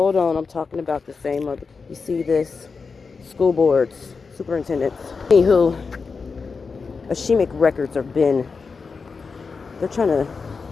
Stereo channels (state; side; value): quieter; right; 4.9 dB